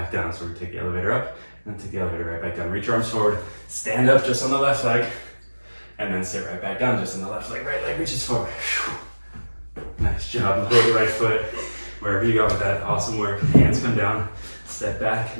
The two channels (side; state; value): both; inverted; correlation -1.00